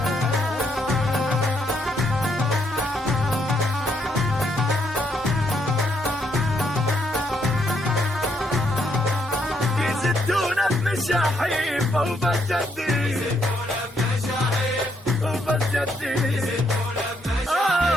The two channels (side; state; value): both; normal; correlation 0.74